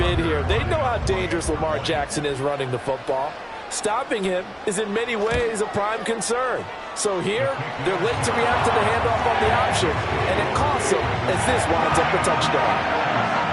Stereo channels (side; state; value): both; identical; correlation 1.00